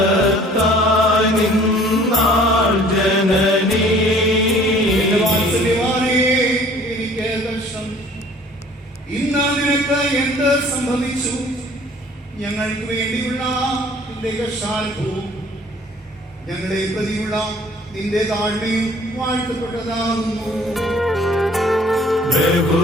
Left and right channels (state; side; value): normal; both; correlation 0.54